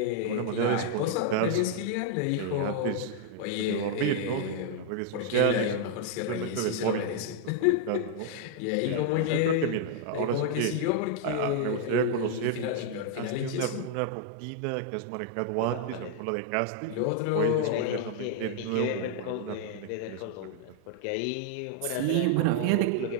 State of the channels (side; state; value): both; different; correlation 0.00